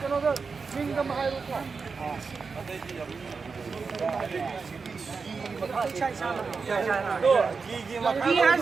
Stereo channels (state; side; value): quieter; left; 4.9 dB